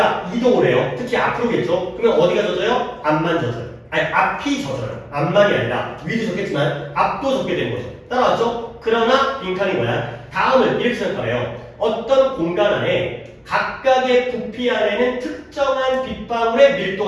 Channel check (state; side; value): identical; both; correlation 1.00